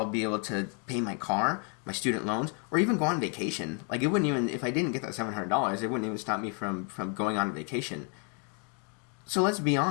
to pay my car, my student loans, or even go on vacation. Like, it wouldn't even, if I didn't get that $700, it wouldn't even stop me from going on vacation. So let's be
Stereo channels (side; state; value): right; quieter; 38.4 dB